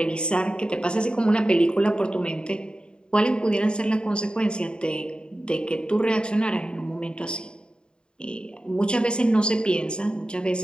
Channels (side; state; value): right; late; 0.051 ms